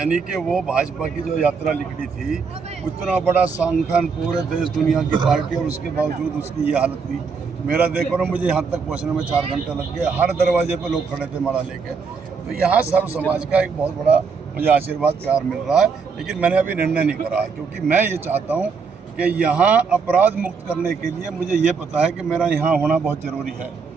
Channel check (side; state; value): left; quieter; 5.3 dB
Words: कि वो भाजपा की जो यात्रा निकली थी, उतना बड़ा संगठन, पूरे देश दुनिया की पार्टी, और उसके बावजूद उसकी ये हालत हुई। मेरा देखो ना, मुझे यहाँ तक पहुँचने में 4 घंटे लग गए। हर दरवाजे पे लोग खड़े थे माला लेके। तो यहाँ सर्व समाज का एक बहुत बड़ा मुझे आशीर्वाद प्यार मिल रहा है। लेकिन मैंने अभी निर्णय नहीं करा है, क्योंकि मैं ये चाहता हूँ कि यहाँ अपराध मुक्त करने के लिए मुझे ये पता है कि मेरा यहाँ होना बहुत ज़रूरी है।